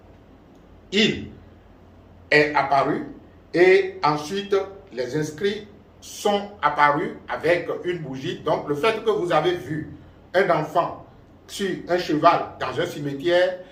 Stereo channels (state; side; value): identical; both; correlation 1.00